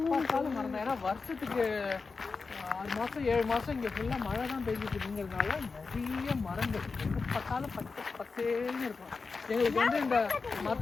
பார்த்தாலும் மரம் தான். ஏன்னா வருஷத்துக்கு 6 மாதம் 7 மாதம் இங்கே ஃபுல்லாக மழை தான் பெஞ்சிட்டுங்கிறதுனால நிறைய மரங்கள் எங்கே பார்த்தாலும் பச்சேன்னு இருக்கும். எங்களுக்கு வந்து இந்த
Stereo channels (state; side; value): quieter; right; 4.5 dB